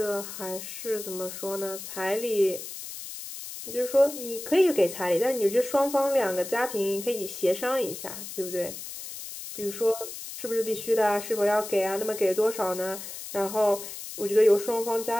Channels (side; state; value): left; noise; hiss, 10 dB below the sound